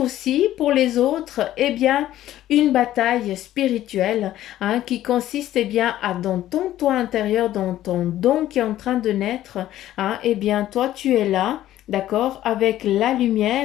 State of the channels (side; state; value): right; quieter; 13.4 dB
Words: pour les autres, eh bien, une bataille spirituelle hein, qui consiste, eh bien, à dans ton toi intérieur, dans ton don qui est en train de naître, hein, eh bien, toi, tu es là. D'accord, avec la